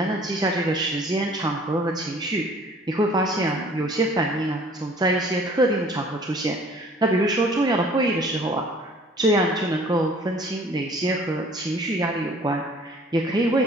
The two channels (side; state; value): both; normal; correlation 0.53